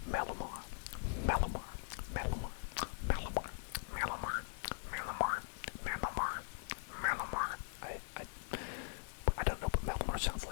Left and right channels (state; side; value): silent; right; digital silence